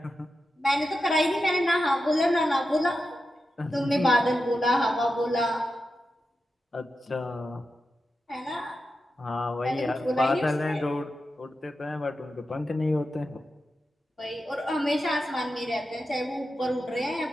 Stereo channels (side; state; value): both; normal; correlation 0.90